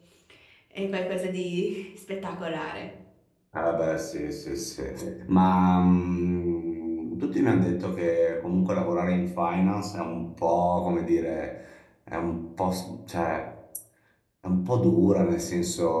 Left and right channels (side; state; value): both; identical; correlation 1.00